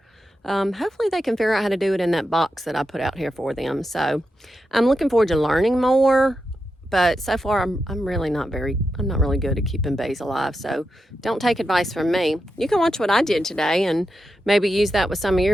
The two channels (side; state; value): both; normal; correlation 0.88